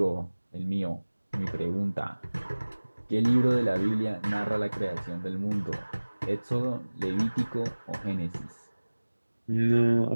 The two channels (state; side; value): inverted; both; correlation -1.00